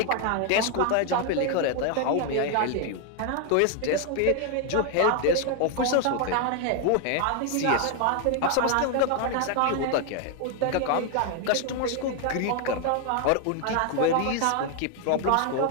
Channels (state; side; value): different; both; correlation 0.01